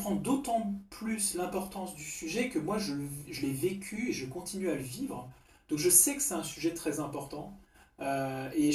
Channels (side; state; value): both; identical; correlation 1.00